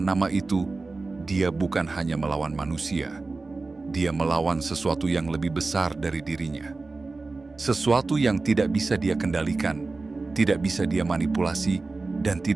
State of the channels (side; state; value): left; quieter; 3.7 dB